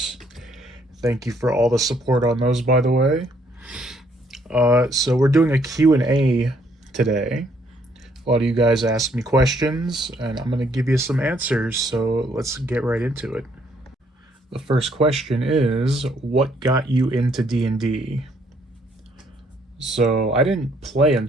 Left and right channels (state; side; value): normal; both; correlation 0.68